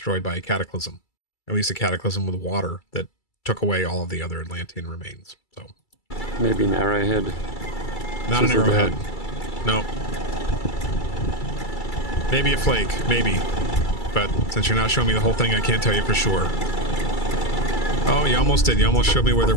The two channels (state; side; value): late; right; 2.3 ms